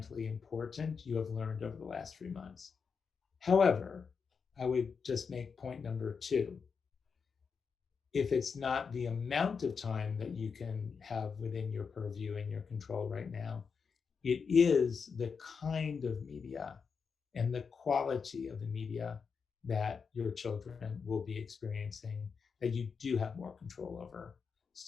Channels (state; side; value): quieter; right; 5.7 dB